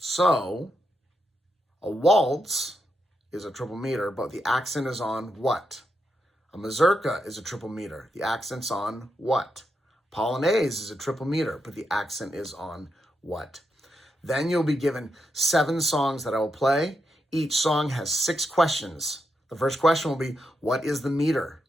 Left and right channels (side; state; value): both; normal; correlation 0.84